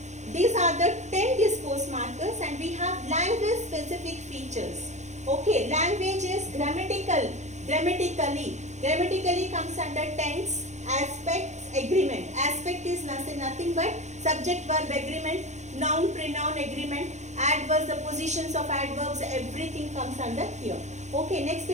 These are the 10 discourse markers, and we have language specific features. Okay, language is grammatically comes under tense, aspects, agreement. Aspect is nothing but subject verb agreement, noun pronoun agreement, adverbs, the positions of adverbs, everything comes under here. Okay, next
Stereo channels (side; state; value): left; late; 0.34 ms